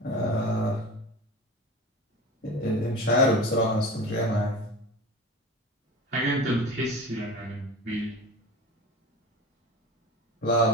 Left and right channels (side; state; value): both; normal; correlation 0.33